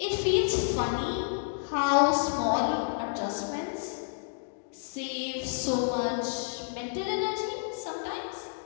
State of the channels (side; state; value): right; silent; digital silence